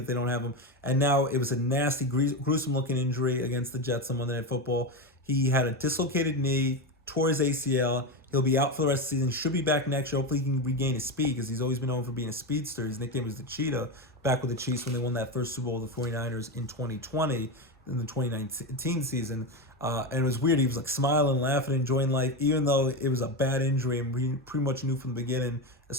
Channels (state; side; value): normal; both; correlation 0.16